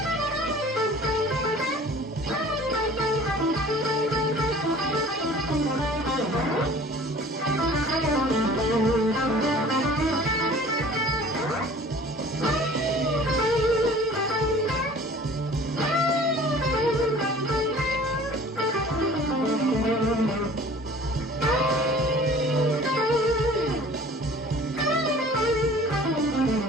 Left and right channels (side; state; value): both; normal; correlation 0.47